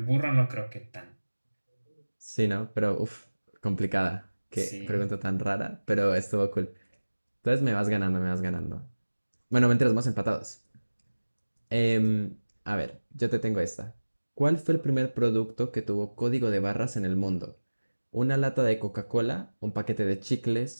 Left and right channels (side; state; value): both; inverted; correlation -1.00